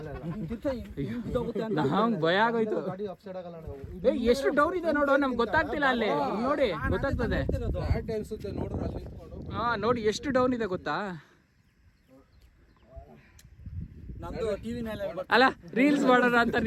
ಭಯ ಆಗೋಯ್ತು. ಗಾಡಿ ಅಪ್ಸೈಡ್ ಆಗಲ್ಲ ಅಣ್ಣ. ಎಷ್ಟು ಡೌನ್ ಇದೆ ನೋಡು, ನಮ್ಗೆ ಗೊತ್ತಾಗ್ತಿಲ್ಲ. ಅಲ್ಲಿ ನೋಡಿ ಗೊತ್ತಾಗ್ತದೆ. ಅನ್ಸುತ್ತೆ ನೋಡ್ರಿ ಅಲ್ಲಿ ನಿಂತ್ಕೊಂಡು. ಹಾ ನೋಡಿ ಎಷ್ಟು ಡೌನ್ ಇದೆ ಗೊತ್ತಾ. ನಮ್ದು ಟಿವಿ ಅಲ್ಲ ರೀಲ್ಸ್ ಮಾಡೋಣ ಅಂತ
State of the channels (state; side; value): identical; both; correlation 1.00